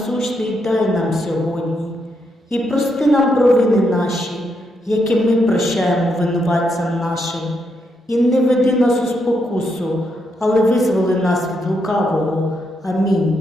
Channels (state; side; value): normal; both; correlation 0.80